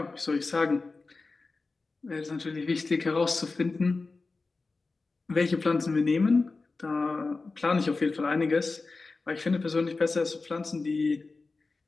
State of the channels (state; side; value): quieter; right; 3.8 dB